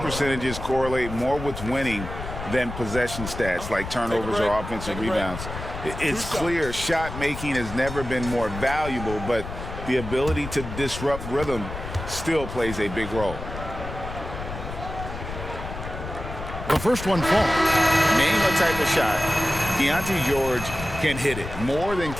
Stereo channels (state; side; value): noise; left; rumble, 9 dB below the sound